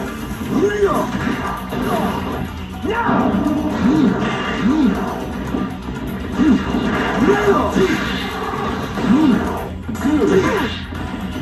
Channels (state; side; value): identical; both; correlation 1.00